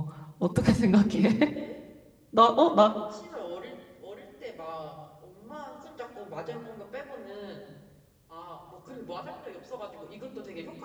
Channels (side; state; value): both; identical; correlation 1.00